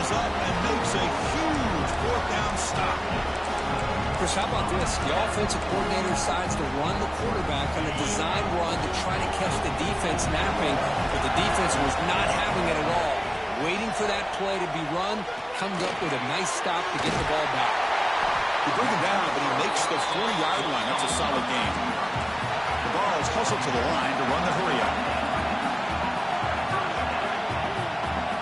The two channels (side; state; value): both; identical; correlation 1.00